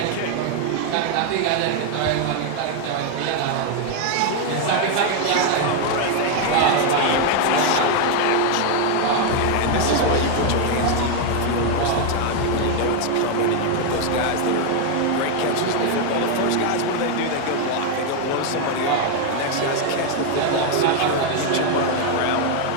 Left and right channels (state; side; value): different; both; correlation 0.01